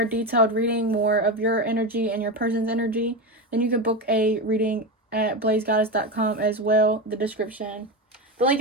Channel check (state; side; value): normal; both; correlation 0.18